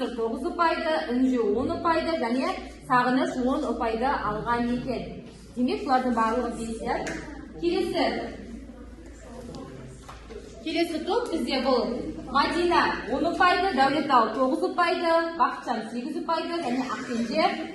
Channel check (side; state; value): both; identical; correlation 1.00